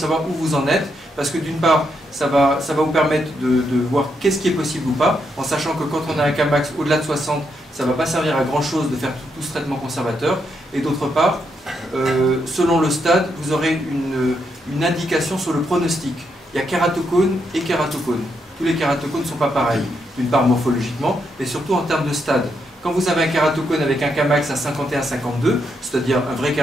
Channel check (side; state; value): both; normal; correlation 0.80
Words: où vous en êtes, parce que d'une part, ça va vous permettre de voir qu'est-ce qui est possible ou pas, en sachant que quand on a un Kmax au-delà de 60, ça ne va pas servir à grand chose de faire tout ce traitement conservateur, et d'autre part, selon le stade, vous aurez une indication sur le pronostic. Il y a kératocone et kératocone. Tous les kératocones ne sont pas pareils, d'une part morphologiquement, mais surtout en termes de stade. Quand vous avez un kératocone avec un Kmax à 51-52, c'est-à-dire un vrai